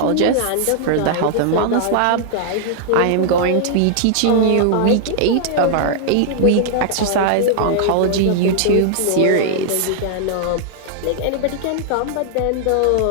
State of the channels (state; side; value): different; both; correlation -0.01